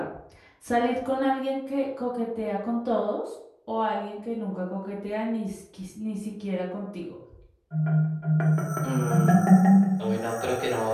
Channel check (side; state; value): both; identical; correlation 1.00